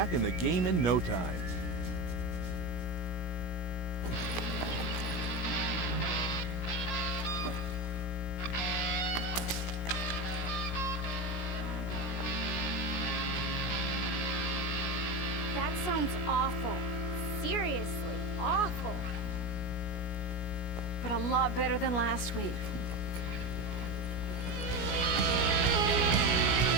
in the game in no time. That sounds awful. Seriously, awful. But a lot better than last week.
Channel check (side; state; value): right; late; 17 ms